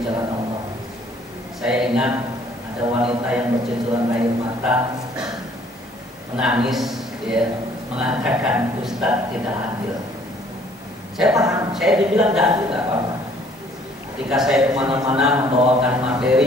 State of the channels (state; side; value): normal; both; correlation 0.59